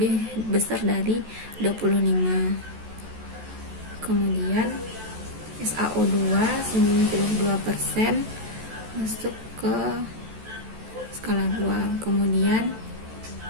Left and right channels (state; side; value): late; left; 14 ms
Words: besar dari 25. Kemudian SaO2 92%, masuk ke skala 2. Kemudian